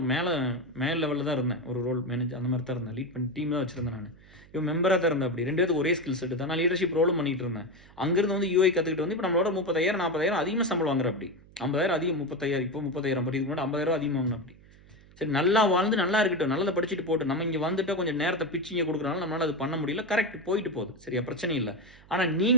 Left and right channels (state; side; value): noise; right; hum, 24 dB below the sound